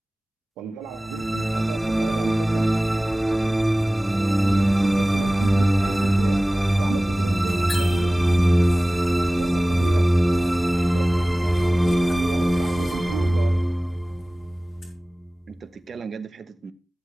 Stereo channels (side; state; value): both; normal; correlation 0.98